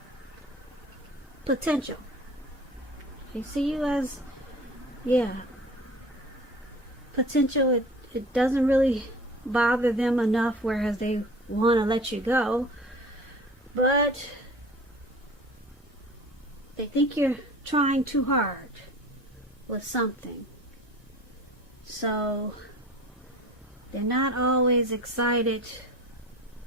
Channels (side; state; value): both; normal; correlation 0.42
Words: potential. They see you as, potential. It doesn't really bother them enough, whereas they want to let you go. But they think you're trying too hard with something. So they're not always excited.